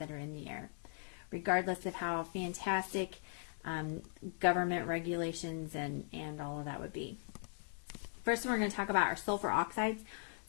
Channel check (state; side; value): silent; right; digital silence